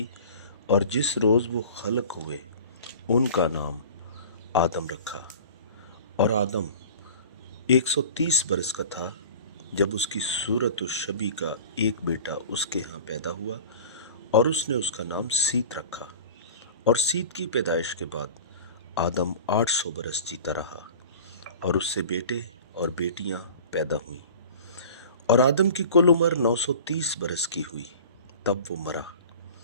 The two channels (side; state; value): both; inverted; correlation -0.41